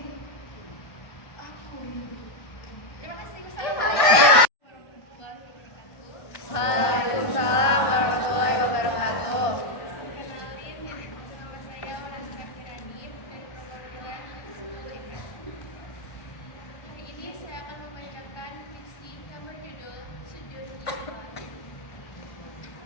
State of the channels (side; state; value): right; late; 1.6 ms